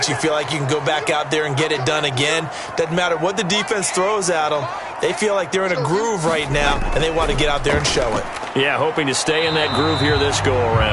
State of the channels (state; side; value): identical; both; correlation 1.00